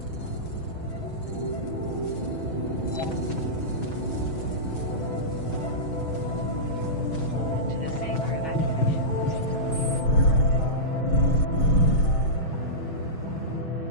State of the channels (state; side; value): late; right; 6.2 ms